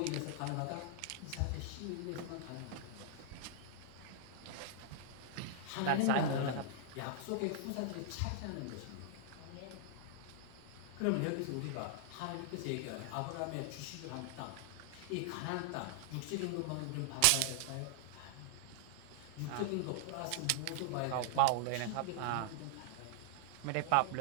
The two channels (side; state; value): both; different; correlation 0.00